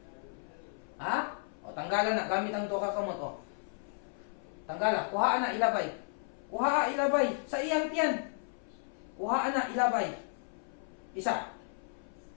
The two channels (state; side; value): silent; right; 55 dB below the other